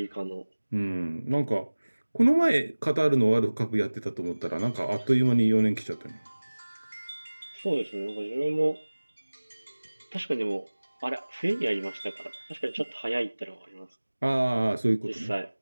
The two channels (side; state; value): both; inverted; correlation -1.00